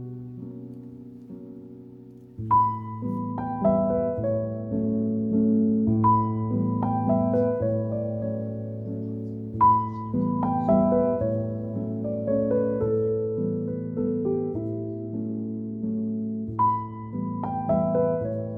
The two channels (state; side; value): identical; both; correlation 1.00